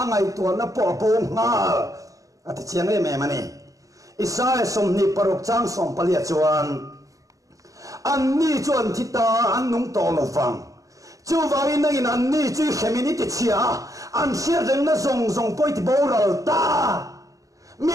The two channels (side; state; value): left; late; 0.16 ms